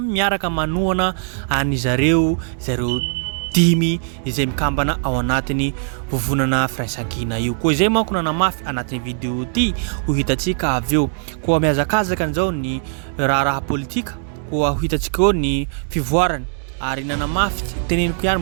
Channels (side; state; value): left; silent; 66 dB below the other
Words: miaraka manohana any zareo dimy izay mikambana ao anatin'ny vovonana firaisan-kina io koa izay manko nanamafy anatin'ny vidéo ty ho hitantsika avy eo koa mihazakazaka an'izao ny raha politika koa ho hitantsika eo ny fivoarany ary nanamafy teneniko ihany